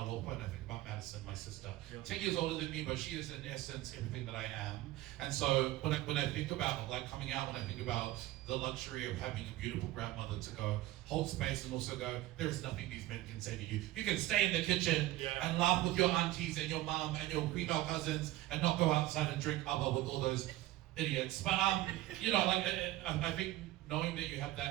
and I think about Madison, my sister, 10 years older than me, but she is in essence everything that I am, and so when I think about like coming out, when I think about the luxury of having a beautiful grandmother to go hold space and also go, there is nothing these men can say to you. You can stay in the kitchen and laugh with your aunties and your mom and your female cousins and not go outside and drink abba with all those idiots. But you know, like I think knowing that you have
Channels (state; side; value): quieter; left; 16.3 dB